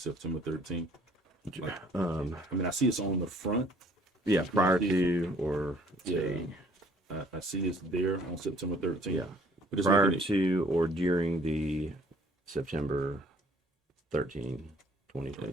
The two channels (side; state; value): both; normal; correlation 0.58